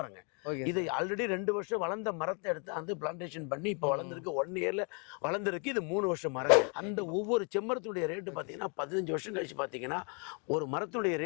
இது ஆல்ரெடி 2 வருஷம் வளர்ந்த மரத்தை எடுத்து வந்து பிளான்டேஷன் பண்ணி இப்ப வளர்ந்துருக்கு. 1 இயர்ல வளர்ந்துருக்கு. இது 3 வருஷம் மரம். அந்த ஒவ்வொரு செம்மரத்துடைய ரேட்டு பாத்தீங்கன்னா 15 வருஷம் கழிச்சு பாத்தீங்கன்னா ஒரு மரத்துடைய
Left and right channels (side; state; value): right; quieter; 36.9 dB